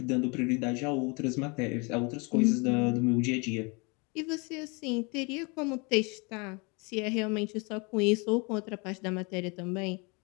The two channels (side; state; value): right; quieter; 30.1 dB